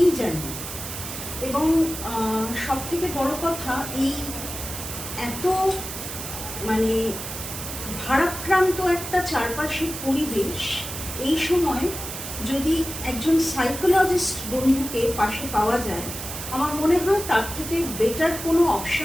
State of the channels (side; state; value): right; noise; hiss, 8 dB below the sound